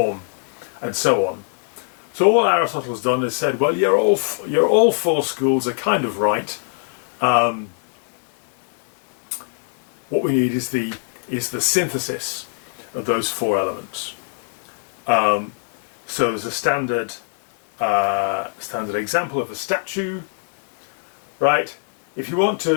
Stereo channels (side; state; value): right; silent; 64 dB below the other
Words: and so on. So all Aristotle's done is said, well, you're all 4 schools are kind of right. What we need is the synthesis of those 4 elements. So there's a standard example of a statue, right? If you want